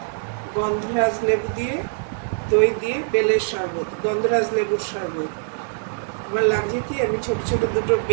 গন্ধরাজ লেবু দিয়ে, দই দিয়ে বেলের শরবত, গন্ধরাজ লেবুর শরবত। আমার লাগছে কি, আমি ছোট ছোট দুটো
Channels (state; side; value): silent; left; 60 dB below the other